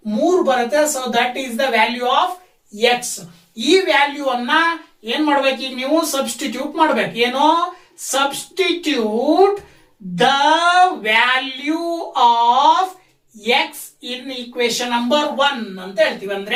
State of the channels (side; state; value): both; identical; correlation 1.00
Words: 3 ಬರುತ್ತೆ. So that is the value of x. ಈ ವ್ಯಾಲ್ಯೂ ಅನ್ನ ಏನ್ ಮಾಡ್ಬೇಕು, ಈಗ ನೀವು ಸಬ್ಸ್ಟಿಟ್ಯೂಟ್ ಮಾಡ್ಬೇಕು. ಏನೋ substitute the value of x in equation number 1 ಅಂತ ಹೇಳ್ತೀವಿ.